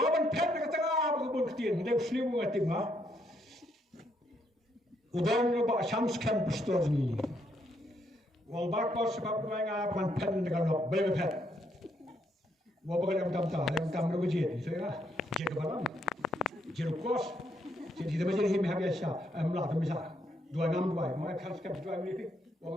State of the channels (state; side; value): normal; both; correlation 0.74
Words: pet dekat tengah berkebun ketin. Dia selimu ngatim ha. Udan ba shams kan pastor ni. Wang bak bos sebab mereka ban pen dekat lok bebe pet. Waban yang tam berjit. So ya. Jek balang. Jek kos. Jadi dia menjadi him habisah. Amlah tu misal. 262. Mereka kan dua ni.